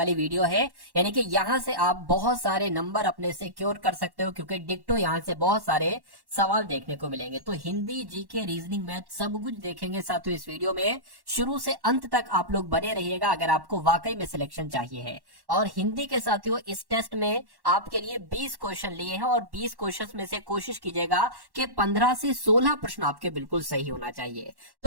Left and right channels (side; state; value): left; late; 1.1 ms